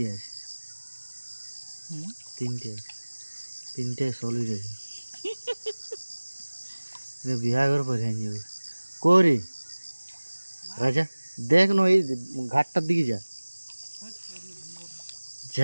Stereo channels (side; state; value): both; inverted; correlation -1.00